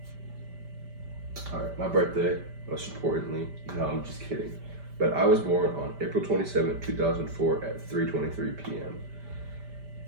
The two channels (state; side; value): late; left; 5.1 ms